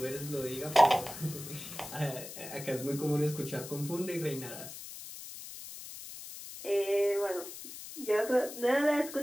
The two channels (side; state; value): left; noise; hiss, 12 dB below the sound